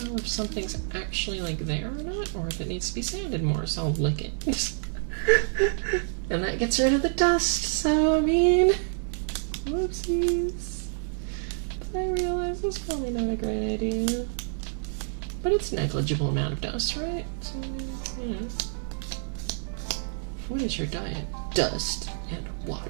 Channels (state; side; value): silent; left; digital silence